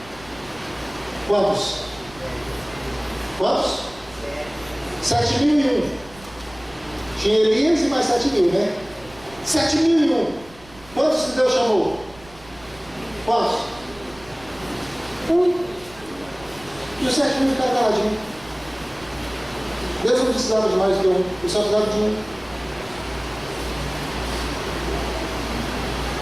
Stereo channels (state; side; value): noise; right; rumble, 22 dB below the sound